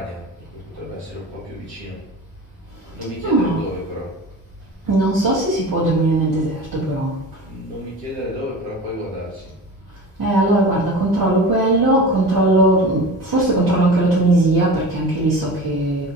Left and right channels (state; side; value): normal; both; correlation 0.34